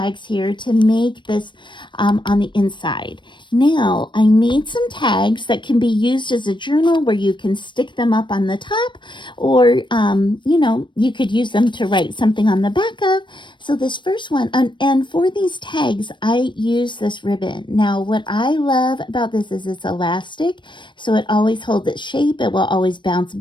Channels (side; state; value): right; late; 0.23 ms